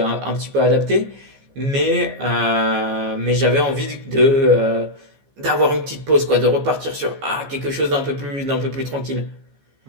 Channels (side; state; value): left; late; 15 ms